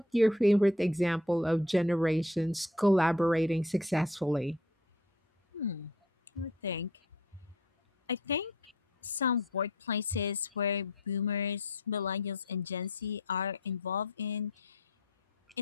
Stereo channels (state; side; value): normal; both; correlation 0.52